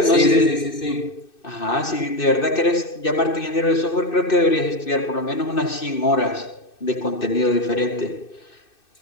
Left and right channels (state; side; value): late; right; 2.6 ms